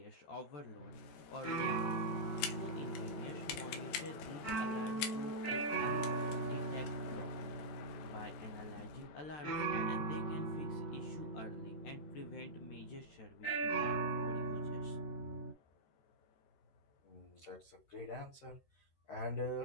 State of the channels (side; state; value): right; late; 14 ms